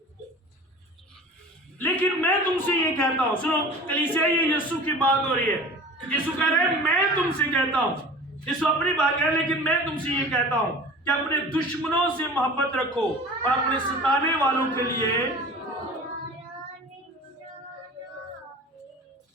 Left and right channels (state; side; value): normal; both; correlation 0.40